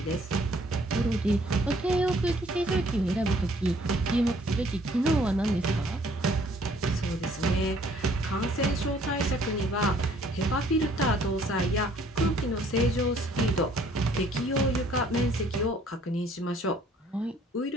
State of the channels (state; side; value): normal; both; correlation 0.60